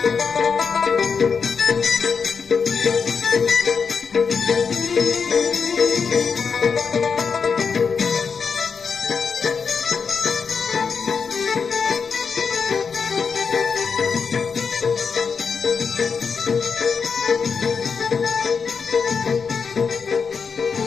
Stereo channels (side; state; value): right; quieter; 5.7 dB